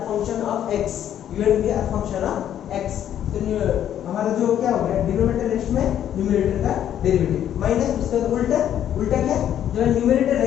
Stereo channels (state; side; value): quieter; right; 10.4 dB